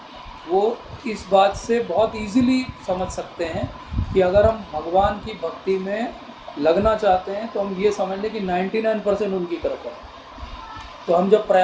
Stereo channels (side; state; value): both; identical; correlation 1.00